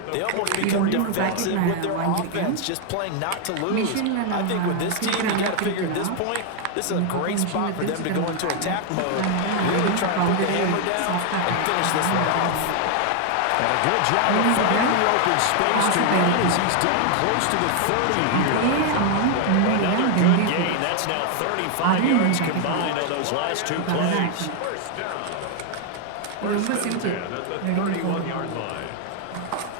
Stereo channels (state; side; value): different; both; correlation 0.00